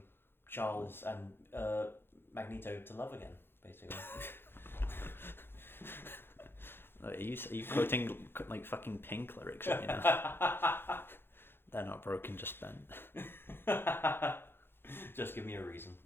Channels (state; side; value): late; right; 0.10 ms